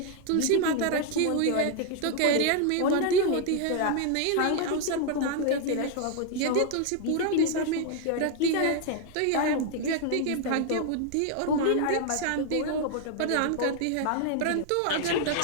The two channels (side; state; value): both; different; correlation 0.00